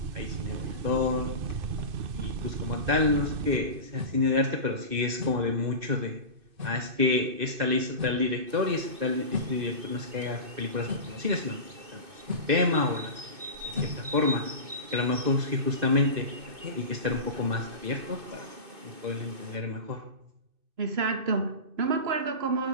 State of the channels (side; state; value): left; late; 2.6 ms